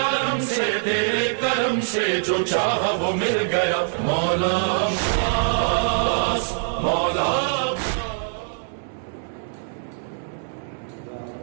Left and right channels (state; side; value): silent; left; 63 dB below the other